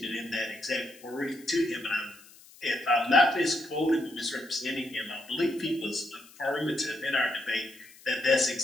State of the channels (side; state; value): left; noise; hiss, 23 dB below the sound